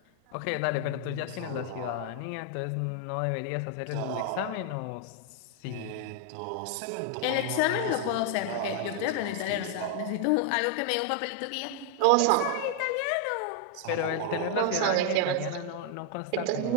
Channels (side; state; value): both; different; correlation 0.00